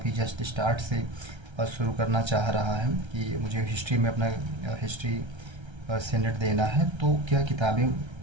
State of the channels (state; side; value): late; left; 1.3 ms